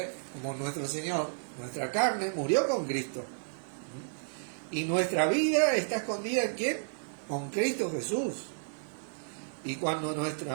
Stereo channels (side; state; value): left; silent; digital silence